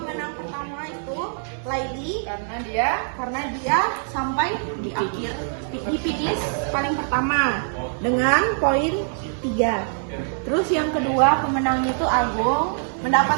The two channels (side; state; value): left; silent; digital silence